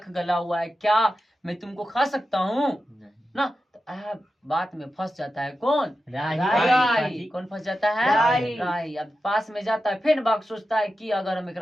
गला हुआ है, क्या मैं तुमको खा सकता हूँ नहीं। ना। तो बात में फंस जाता है कौन, राही। कौन फंस जाता है, राही। राही। अब पास में जाता है, फिर बाघ सोचता है कि अगर हम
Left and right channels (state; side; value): normal; both; correlation 0.91